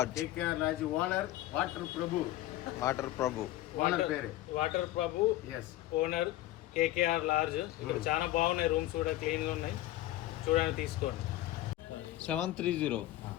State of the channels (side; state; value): right; quieter; 15.3 dB